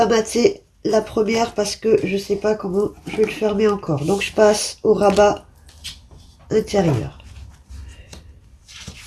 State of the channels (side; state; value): both; identical; correlation 1.00